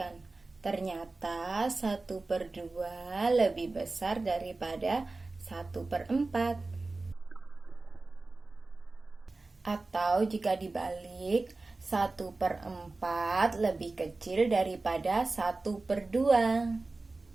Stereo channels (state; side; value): quieter; left; 3.4 dB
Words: ternyata 1/2 lebih besar daripada 1/4. Atau jika dibalik, 1/4 lebih kecil daripada 1/2.